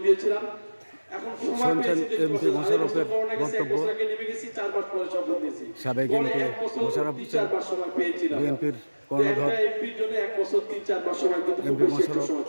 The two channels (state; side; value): inverted; both; correlation -1.00